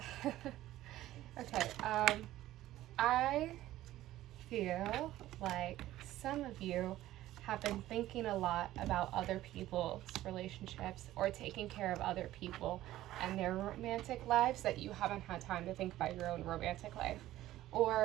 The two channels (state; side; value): quieter; left; 14.8 dB